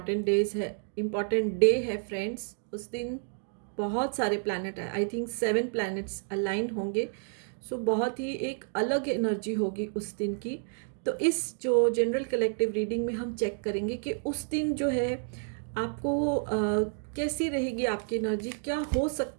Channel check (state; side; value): silent; left; 58 dB below the other